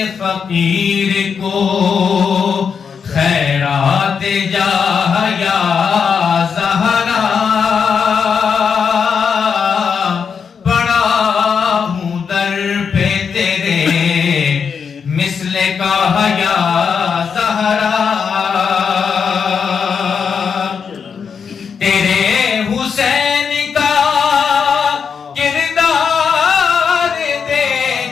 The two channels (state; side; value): quieter; right; 6.4 dB